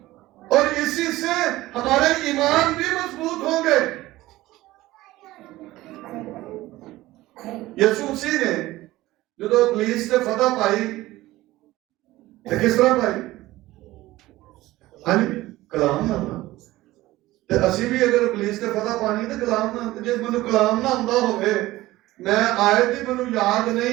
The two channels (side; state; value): left; quieter; 17.3 dB